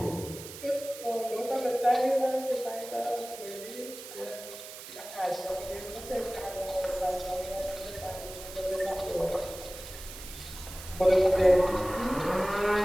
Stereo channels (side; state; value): right; noise; hiss, 13 dB below the sound